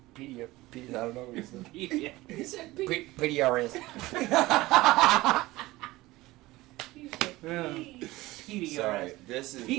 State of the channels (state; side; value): quieter; left; 19.0 dB